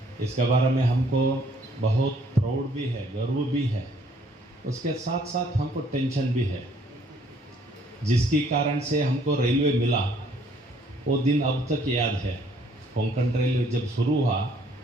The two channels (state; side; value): normal; both; correlation 0.63